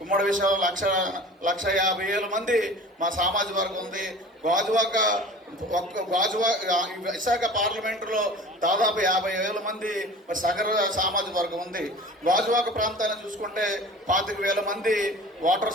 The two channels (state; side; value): normal; both; correlation 0.41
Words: ఉమ్మడి విశాఖ 1,50,000 మంది మా సామాజిక వర్గం ఉంది. విశాఖ పార్లమెంటులో దాదాపు 50,000 మంది సగర సామాజిక వర్గం ఉంది. గాజువాక ప్రాంతాన్ని చూసుకుంటే 25,000 మంది